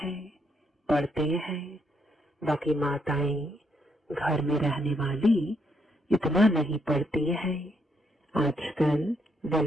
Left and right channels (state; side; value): normal; both; correlation 0.76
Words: पढ़ते हैं। बाकी माताएं घर में रहने वाली इतना नहीं पढ़ती है। आजकल